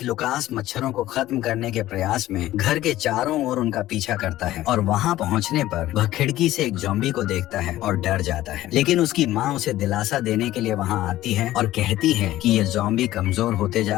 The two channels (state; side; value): quieter; right; 15.0 dB